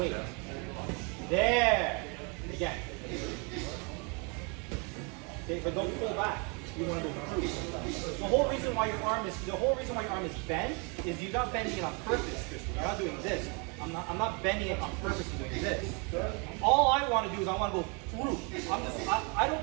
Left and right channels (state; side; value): quieter; left; 33.3 dB